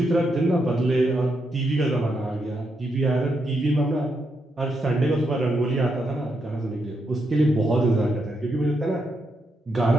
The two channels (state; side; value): normal; both; correlation 0.81